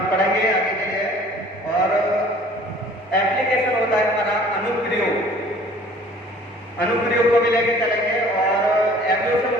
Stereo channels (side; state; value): both; normal; correlation 0.51